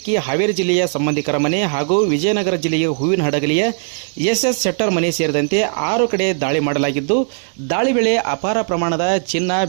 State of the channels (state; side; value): silent; left; digital silence